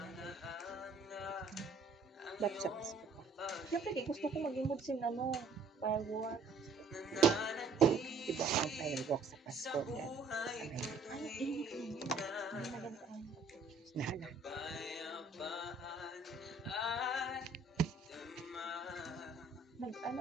Ba't siya kasi? Siyempre, gusto ko mag-imod sin firework. Diba ang firework sa Pasko? Nahala. Nag-ano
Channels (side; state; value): left; quieter; 3.9 dB